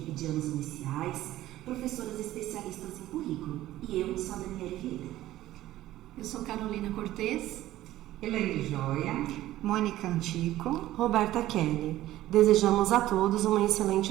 de anos iniciais, professoras especialistas em currículo, e eu sou a Daniela Vieira. Eu sou Carolina Cortez, Elaine Joia, Mônica Antico, Roberta Kelly. Desejamos a todos uma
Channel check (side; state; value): left; quieter; 14.8 dB